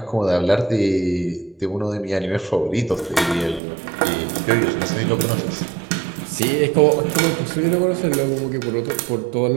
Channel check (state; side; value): drops out; left; at 3.6 s